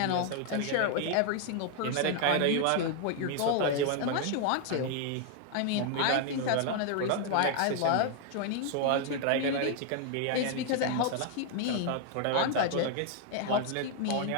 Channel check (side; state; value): both; different; correlation 0.00